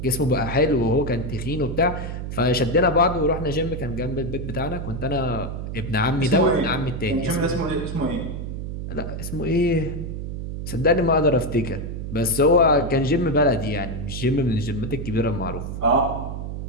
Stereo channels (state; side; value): noise; right; hum, 6 dB below the sound